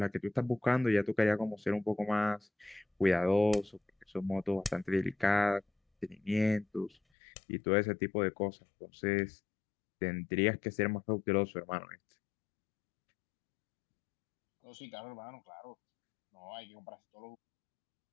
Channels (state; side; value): drops out; right; at 7.0 s